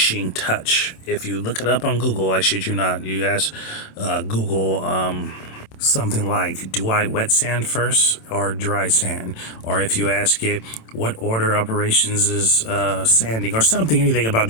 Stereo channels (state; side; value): late; right; 27 ms